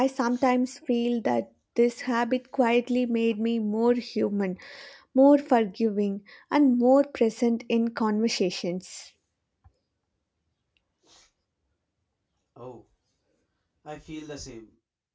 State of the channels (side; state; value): both; identical; correlation 1.00